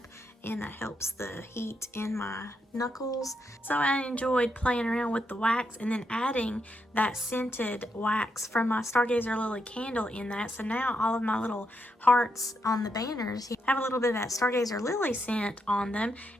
and that helps the heat in my knuckles. So I enjoyed playing around with the wax and then adding that scented wax from my Stargazer Lily candle in that. So now all of my little hearts on the banners have a little bit of that Stargazer Lily scent on them,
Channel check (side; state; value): both; normal; correlation 0.80